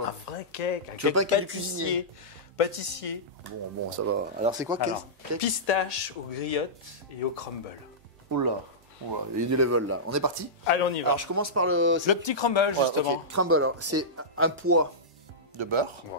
Un vrai cake. Un Tu veux cake pas un cake cuisinier? Pâtissier. Bon, ça va. Alors, c'est quoi Alors, cake? pistache aux griottes et au crumble. Oula, il y a du level là. On est parti? Allez, on y va. Alors, je commence par le. Le petit crumble, Voilà, justement. ok. Crumble, alors, c'est un poids de beurre.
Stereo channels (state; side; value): normal; both; correlation -0.15